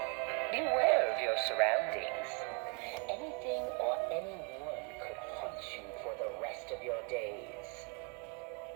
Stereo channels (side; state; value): left; quieter; 34.4 dB